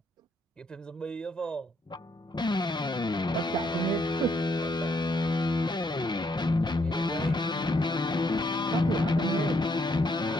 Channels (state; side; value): normal; both; correlation 0.72